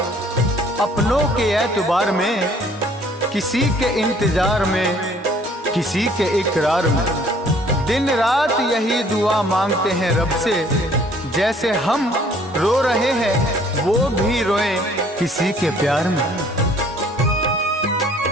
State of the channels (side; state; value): both; normal; correlation 0.58